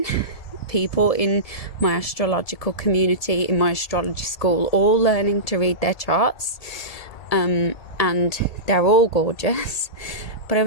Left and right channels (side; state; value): right; late; 2.0 ms